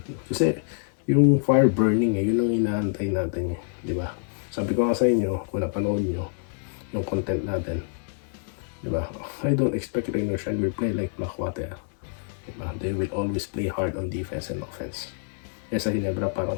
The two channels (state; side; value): silent; right; digital silence